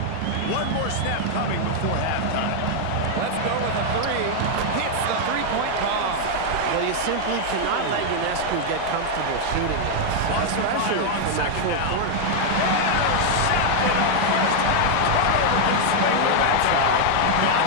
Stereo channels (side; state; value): both; different; correlation 0.00